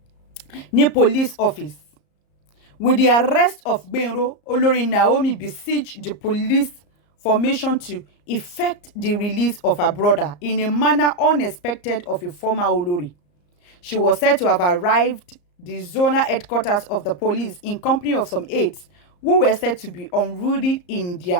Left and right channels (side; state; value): right; late; 34 ms